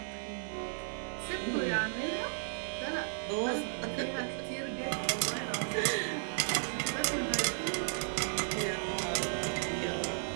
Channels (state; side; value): silent; left; digital silence